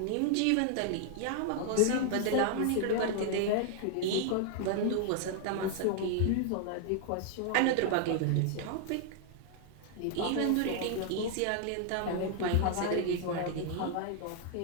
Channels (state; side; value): different; both; correlation 0.00